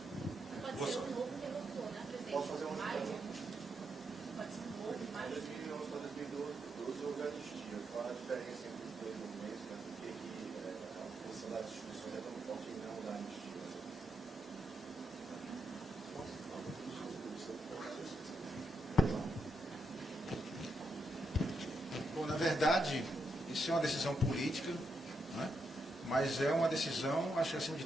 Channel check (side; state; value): both; normal; correlation 0.81